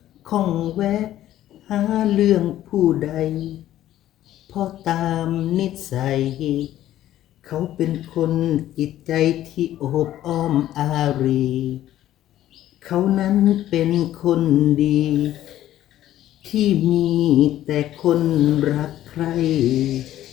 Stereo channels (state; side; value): quieter; right; 13.1 dB